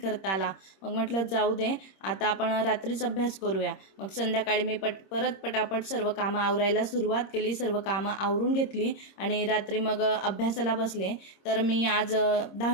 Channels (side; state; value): right; late; 26 ms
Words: आला. मग म्हटलं जाऊ दे, आता आपण रात्रीच अभ्यास करूया. मग संध्याकाळी मी परत पटापट सर्व कामं आवरायला सुरुवात केली. सर्व कामं आवरून घेतली आणि रात्री मग अभ्यासाला बसले. तर मी आज